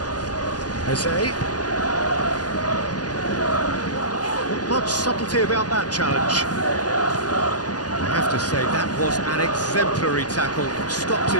Jose. Not much subtlety about that challenge. I have to say that was an exemplary tackle. Stopped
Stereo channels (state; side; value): late; right; 0.69 ms